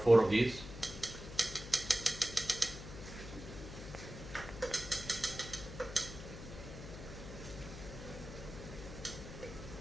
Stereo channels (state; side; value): noise; left; hum, 11 dB below the sound